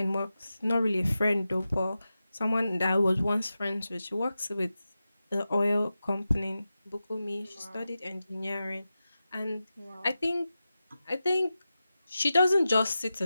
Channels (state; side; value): inverted; both; correlation -0.93